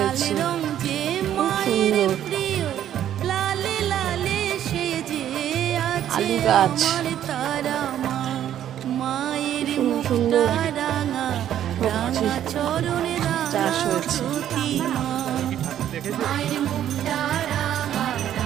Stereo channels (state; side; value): quieter; left; 10.9 dB